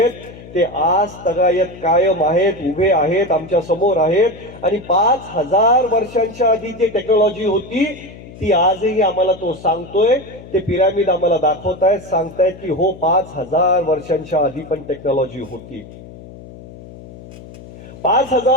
ते आज तगायत कायम आहेत, उभे आहेत, आमच्या समोर आहेत. आणि 5000 वर्षांच्या आधी जी टेक्नॉलॉजी होती ती आजही आम्हाला तो सांगतोय. ते पिरामिड आम्हाला दाखवतायत, सांगतायत की हो 5000 वर्षांच्या आधी पण टेक्नॉलॉजी होती.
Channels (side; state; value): left; noise; hum, 17 dB below the sound